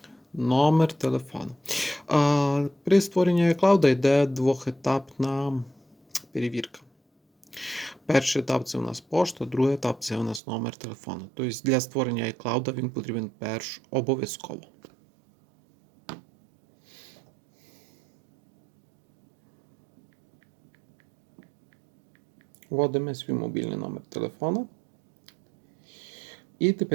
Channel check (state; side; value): drops out; left; at 10.4 s